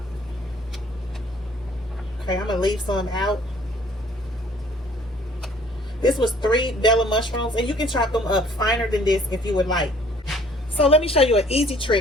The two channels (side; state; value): both; normal; correlation 0.56